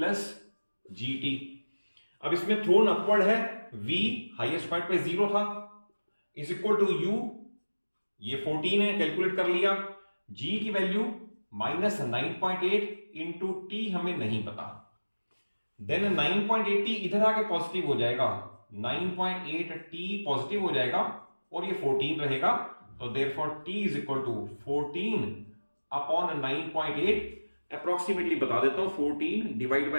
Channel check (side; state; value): both; inverted; correlation -1.00